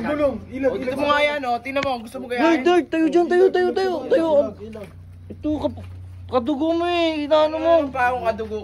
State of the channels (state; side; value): identical; both; correlation 1.00